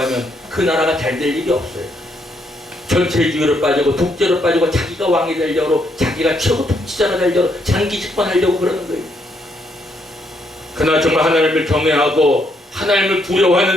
그 나라가 잘 될 일이 없어요. 전체주의로 빠지고 독재로 빠지고 자기가 왕이 되려고, 자기가 최고 통치자가 되려고, 장기 집권하려고 그러는 거예요. 그러나 정말 하나님을 경외하고 하나님을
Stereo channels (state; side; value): normal; both; correlation 0.75